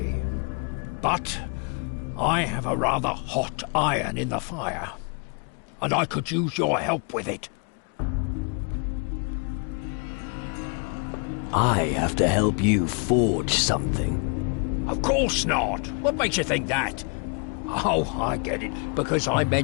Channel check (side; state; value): right; quieter; 36.4 dB